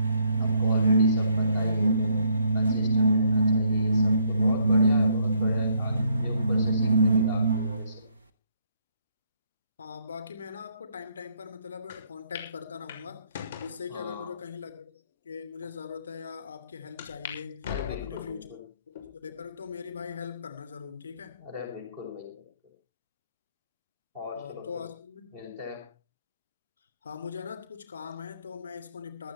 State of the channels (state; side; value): inverted; both; correlation -0.70